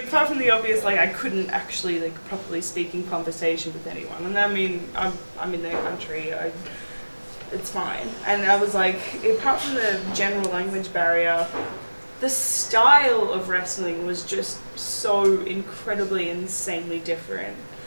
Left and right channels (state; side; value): inverted; both; correlation -1.00